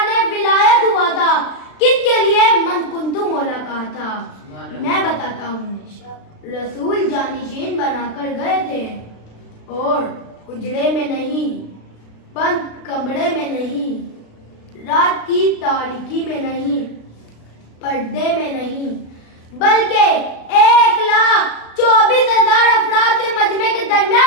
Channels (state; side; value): late; right; 36 ms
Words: विलायत हुआ था, किसके लिए मन कुंतु मौला कहा था। मैं बताता हूँ रसूल जानशीन बनाकर गए थे और उजड़े में नहीं, बंद कमरे में नहीं, रात की तारीकी में नहीं, पर्दे में नहीं, बल्कि 1,24,000 अफराद के मजमे के